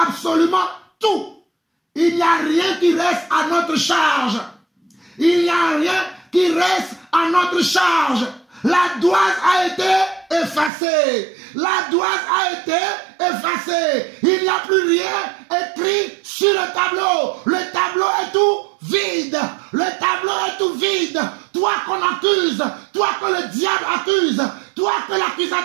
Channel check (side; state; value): left; drops out; at 10.7 s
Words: tout. Il n'y a rien qui reste à notre charge. Il n'y a rien qui reste à notre charge. La douane a été effacée. La douane a été effacée. Il n'y a plus rien écrit sur le tableau. Le tableau est tout vide. Le tableau est tout vide. Toi qu'on accuse, toi que le diable accuse, toi que